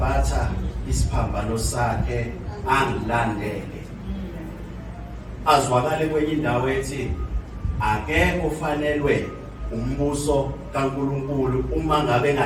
isiphambano sakhe angilandele. Azwakale kwenye indawo ethi akekho ufanelwe umbuso kaNkulunkulu uma ngabe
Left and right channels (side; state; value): both; identical; correlation 1.00